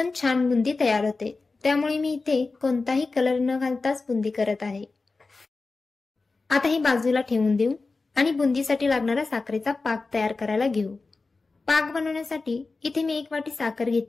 छान बुंदी तयार होते। त्यामुळे मी इथे कोणताही कलर न घालताच बुंदी करत आहे। आता हे बाजूला ठेवून देऊ आणि बुंदीसाठी लागणारा साखरेचा पाक तयार करायला घेऊ। पाक बनवण्यासाठी इथे मी 1 वाटी साखर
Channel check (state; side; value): quieter; right; 3.8 dB